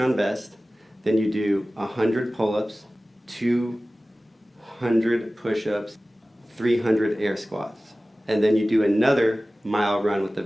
vest, then you do 100 pull-ups, 200 push-ups, 300 air squats, and then you do another mile run with the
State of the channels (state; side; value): normal; both; correlation 0.97